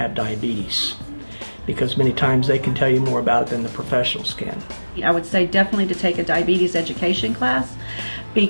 diabetes, because many times they can tell you more about it than the professionals can. I would say definitely to take a diabetes education class,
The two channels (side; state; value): both; inverted; correlation -1.00